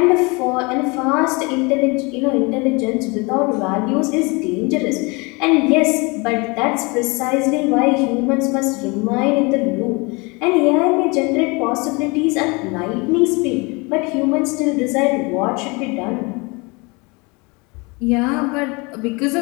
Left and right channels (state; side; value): quieter; right; 27.7 dB